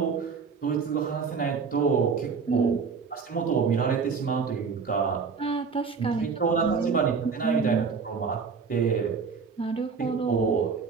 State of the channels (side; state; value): left; quieter; 5.5 dB